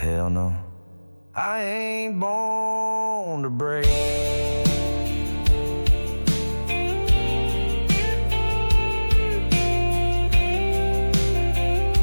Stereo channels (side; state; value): both; inverted; correlation -1.00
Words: no, I ain't born to break.